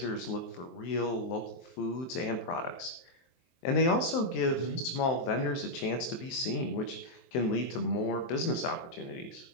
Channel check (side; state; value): right; late; 23 ms